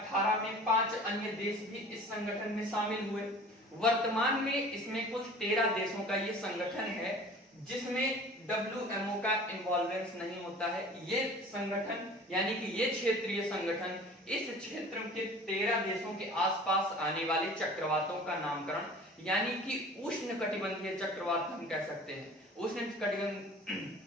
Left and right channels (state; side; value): normal; both; correlation 0.44